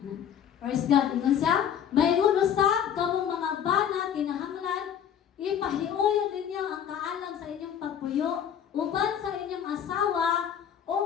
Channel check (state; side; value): quieter; right; 8.9 dB